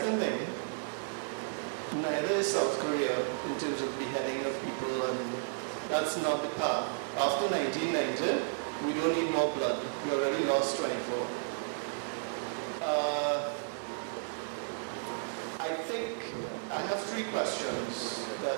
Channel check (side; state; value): left; silent; digital silence